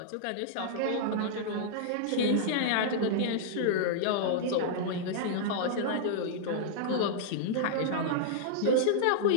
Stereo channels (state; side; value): different; both; correlation -0.02